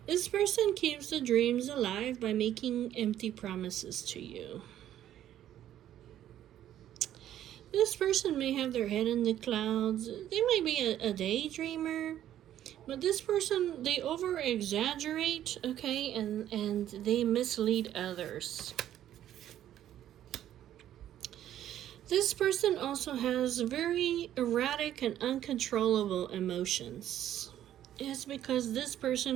This person keeps the dreams alive by making empty promises to you. This person may have their head in the clouds. They might be a daydreamer. But this person, they over-exaggerate, okay, and they mislead others. This person also has very erratic and uncontrollable emotions. It's because this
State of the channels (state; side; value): quieter; left; 11.7 dB